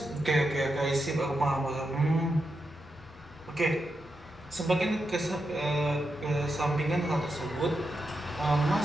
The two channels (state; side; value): normal; both; correlation 0.86